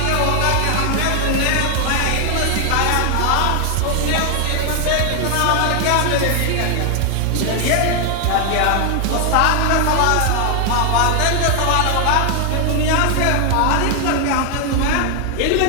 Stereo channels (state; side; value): different; both; correlation 0.00